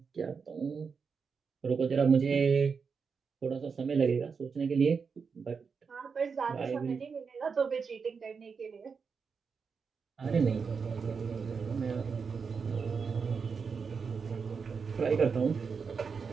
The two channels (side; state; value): left; quieter; 5.6 dB